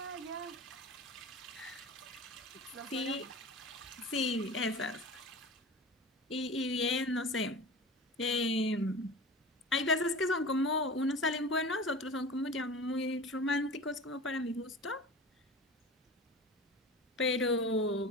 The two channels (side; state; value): both; normal; correlation 0.35